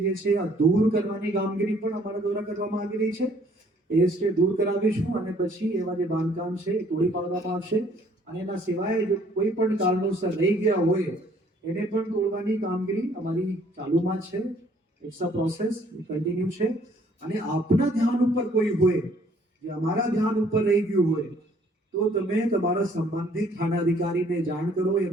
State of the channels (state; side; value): normal; both; correlation 0.61